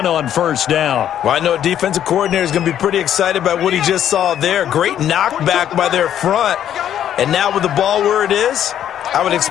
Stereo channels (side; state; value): right; quieter; 10.4 dB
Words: on 1st down. Well, I know a defensive coordinator is going to be pretty excited by what he just saw there. Great knockback by their front. And now with the ball where it is, I would